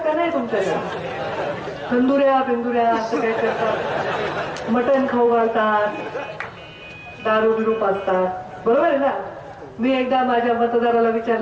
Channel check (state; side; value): identical; both; correlation 1.00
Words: का नाही तुमच्याकडे? तंदुऱ्या बिंदुऱ्या असं काय करतात, मटण खाऊ घालतात, दारू बिरू पाजतात, बरोबर आहे ना? मी एकदा माझ्या मतदाराला